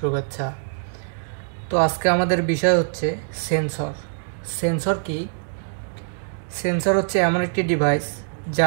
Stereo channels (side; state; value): left; silent; digital silence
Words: তো আজকে আমাদের বিষয় হচ্ছে সেন্সর। সেন্সর কি? সেন্সর হচ্ছে এমন একটি ডিভাইস